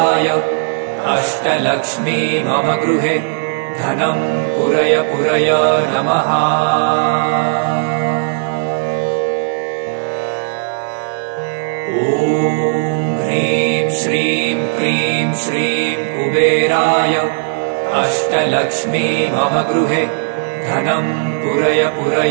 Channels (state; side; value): silent; left; digital silence